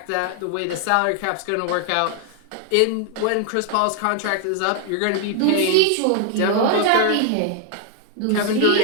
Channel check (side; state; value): both; different; correlation 0.01